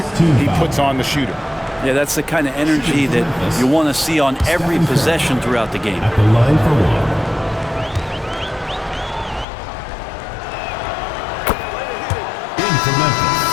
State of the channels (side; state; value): right; drops out; at 9.5 s